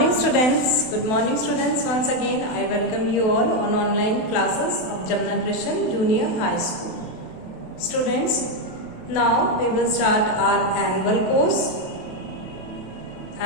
students. Good morning students. Once again I welcome you all on online classes of Jamna Christian Junior High School. Students, now we will start our annual course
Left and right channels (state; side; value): late; right; 28 ms